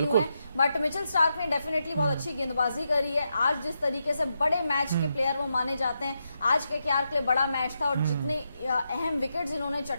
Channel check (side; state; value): both; inverted; correlation -0.84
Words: हुए हैं। बट मिचेल स्टार्क ने डेफिनेटली बहुत अच्छी गेंदबाजी करी है। आज जिस तरीके से बड़े मैच के प्लेयर वो माने जाते हैं, आज के केकेआर के लिए बड़ा मैच था, और जितने अहम विकेट्स इन्होंने